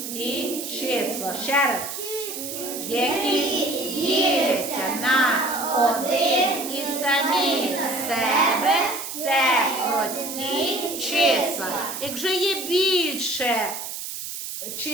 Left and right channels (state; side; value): noise; right; hiss, 7 dB below the sound